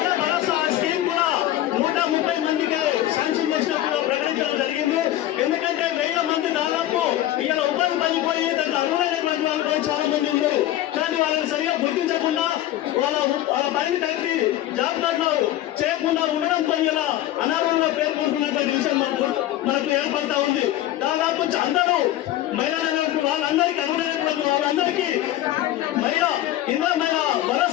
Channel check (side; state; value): right; quieter; 13.9 dB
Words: భరోసా స్కీమ్ కూడా 130 మందికి శాంక్షన్ చేసినట్టుగా ప్రకటించడం జరిగింది. ఎందుకంటే 1000 మంది దాదాపు ఇలా ఉపాధి పనిపోయి దాన్ని అర్హులైనటువంటి వాళ్ళు కూడా చాలా మంది ఉన్నారు. కానీ వాళ్ళని సరిగా గుర్తించకుండా వాళ్ళ పనిని కట్టి జాబ్ కార్డులో చేయకుండా ఉండడంతో ఇలా అనారోగ్యంగా పేర్కొంటున్నట్టు విషయం మనకు ఏర్పడతా ఉంది. దాదాపు అందరూ మహిళలు వాళ్ళందరికీ అర్హులైనటువంటి వాళ్ళందరికీ మహిళా